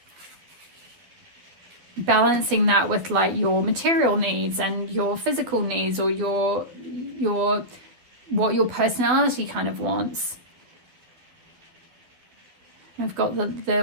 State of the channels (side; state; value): left; late; 11 ms